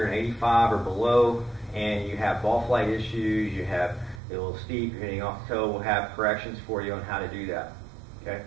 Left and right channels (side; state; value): left; drops out; at 4.2 s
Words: an 85 or below, and you have ball flight issues, you have a little steep, you're hitting off the toe. We'll have corrections for you on how to do that. Okay.